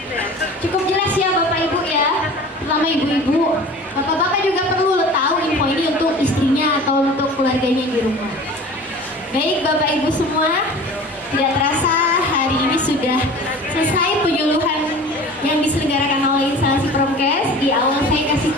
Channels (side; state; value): both; normal; correlation 0.40